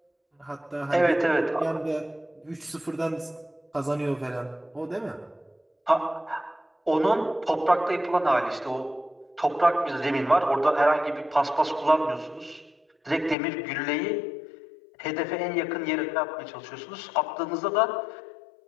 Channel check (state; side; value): drops out; right; at 13.4 s